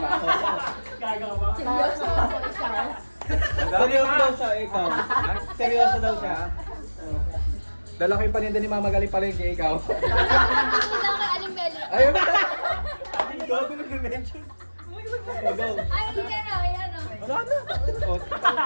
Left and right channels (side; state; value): both; inverted; correlation -1.00